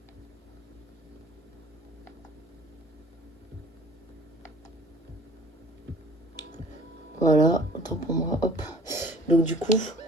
Voilà, autant pour moi, hop. Donc du coup,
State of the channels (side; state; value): both; normal; correlation 0.50